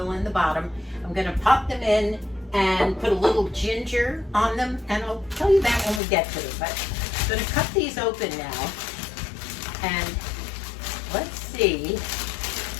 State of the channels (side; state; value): right; drops out; at 6.0 s